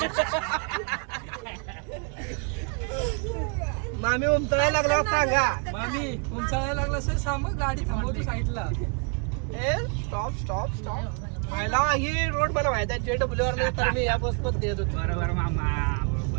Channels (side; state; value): left; quieter; 38.0 dB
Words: मामी उमटायला लागला सांगा. मामी उंचाळायला लागला असेल, सांग गाडी थांबवतो साईडला. Stop stop stop. पहिला ही रोड मला माहिती आहे, JW वर तर मी या बस पण नेत होतो. बरोबर मामा,